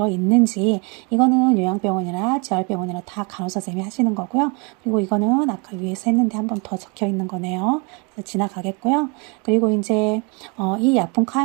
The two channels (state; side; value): quieter; left; 32.1 dB